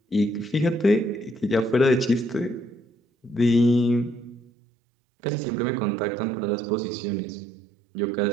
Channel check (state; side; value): drops out; left; at 4.4 s